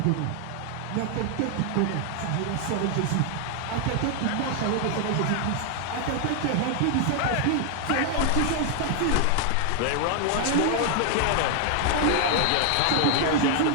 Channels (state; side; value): different; both; correlation 0.00